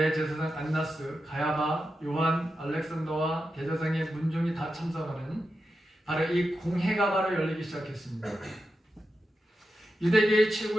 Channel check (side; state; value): both; normal; correlation 0.89